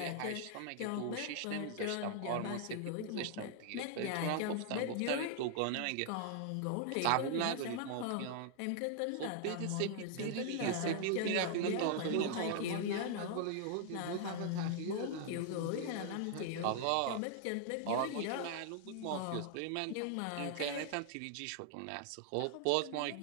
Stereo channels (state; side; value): different; both; correlation 0.00